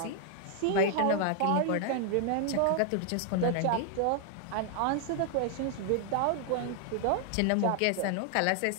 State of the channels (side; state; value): both; different; correlation 0.00